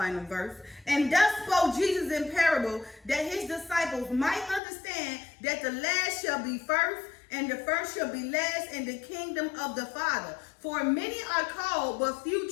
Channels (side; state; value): right; drops out; at 4.6 s